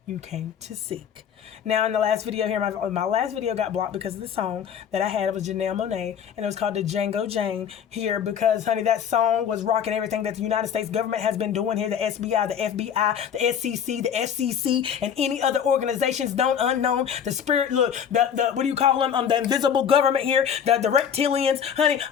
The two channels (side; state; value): right; quieter; 8.3 dB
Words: you came to seek. Now, in the last video here, my last video got blocked because of the song that I had. It was Janelle Monáe, and it was called the Django Jane here because, honey, that song was rocking everything that the United States government has been doing here. The SBI, the FBI, the SEC, the FCC, and any other organizations known, unknown. The spirit, look, the what do you call them? The invisible government here, the reptilians, honey.